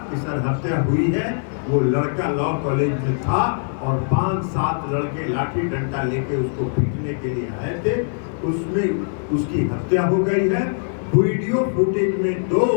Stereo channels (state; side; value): silent; right; 61 dB below the other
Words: कि सर हत्या हुई है, वो लड़का लॉ कॉलेज में था और 5-7 लड़के लाठी डंडा लेके उसको पीटने के लिए आए थे, उसमें उसकी हत्या हो गई है। वीडियो फुटेज में 2